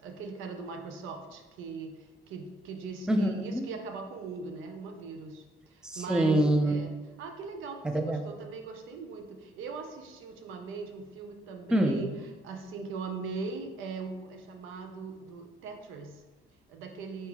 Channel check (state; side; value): normal; both; correlation 0.75